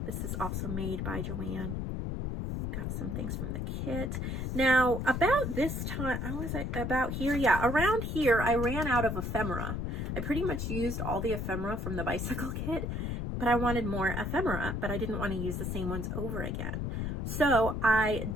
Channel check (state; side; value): noise; left; rumble, 2 dB below the sound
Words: This is also made by JoAnn. Got some things from the kit. Now, about this time, how was I about here? Yeah, around here, I ran out of ephemera. I pretty much used all the ephemera from the bicycle kit, but I wanted more ephemera, but I didn't want to use the same ones over again. So I